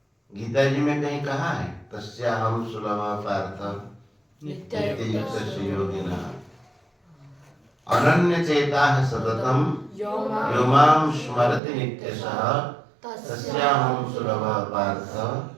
गीता जी में कहीं कहा है तस्याहं सुलभ पार्थ नित्ययुक्तस्य योगिनः अनन्य चेताः सततं यो मां स्मरति नित्यशः तस्याहं सुलभ पार्थ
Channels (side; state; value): left; drops out; at 11.6 s